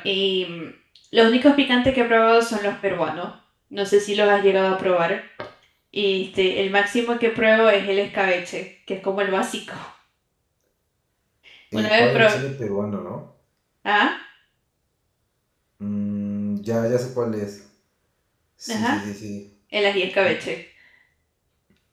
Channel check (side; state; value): both; identical; correlation 1.00